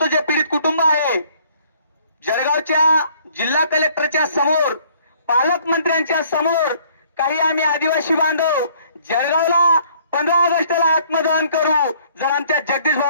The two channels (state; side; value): inverted; both; correlation -0.60